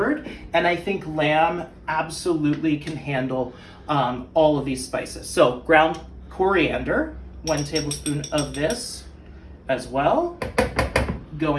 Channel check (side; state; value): both; identical; correlation 1.00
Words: and I think lamb absolutely can handle all of these spices. So ground coriander, 1 tablespoon of this as well,